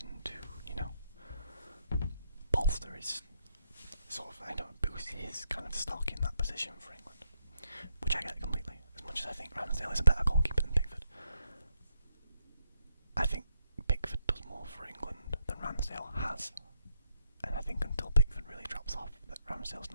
to, bolster his boost his kind of stock in that position for England, which I get completely. As much as I think Ramsdale is a better goalkeeper than Pickford, I think Pickford does more for England than Ramsdale has, and I think until Pickford really drops off, that Ramsdale's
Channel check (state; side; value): inverted; both; correlation -0.77